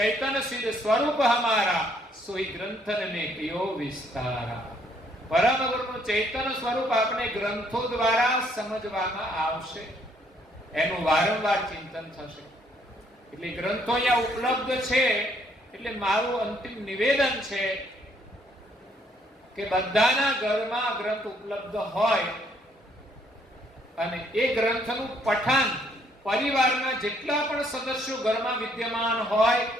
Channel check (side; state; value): both; normal; correlation 0.67